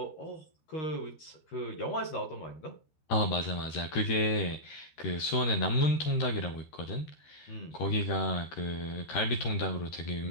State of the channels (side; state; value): right; late; 13 ms